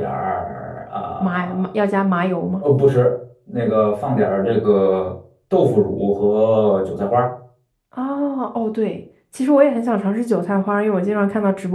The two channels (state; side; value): identical; both; correlation 1.00